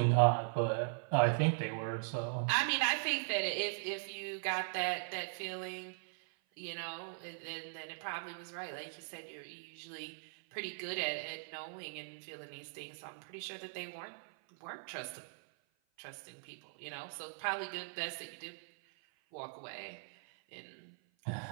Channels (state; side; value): silent; left; 51 dB below the other